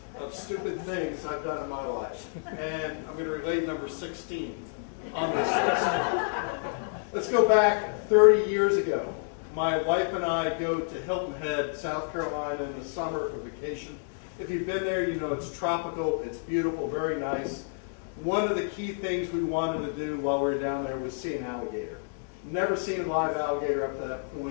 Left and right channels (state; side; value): silent; right; digital silence